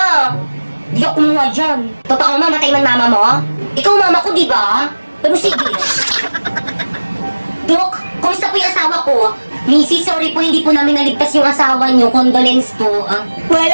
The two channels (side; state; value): both; inverted; correlation -1.00